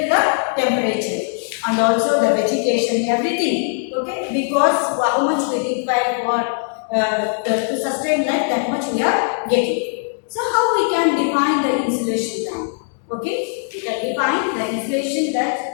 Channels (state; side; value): silent; right; digital silence